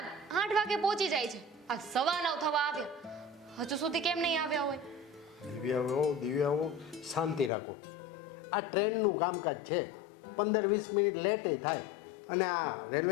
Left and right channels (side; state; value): right; drops out; at 7.5 s